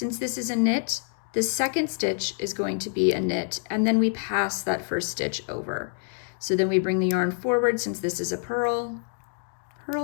this is a knit, the second stitch is going to be a knit, and then we pass that first stitch over. So then we bring the yarn forward, since this is a purl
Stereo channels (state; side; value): silent; right; 60 dB below the other